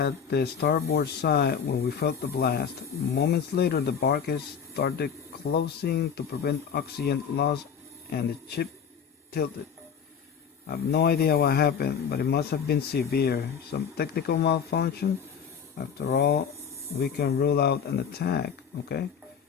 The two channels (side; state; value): right; quieter; 7.2 dB